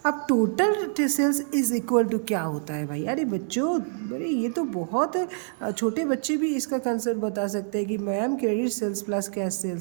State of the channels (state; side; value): silent; left; digital silence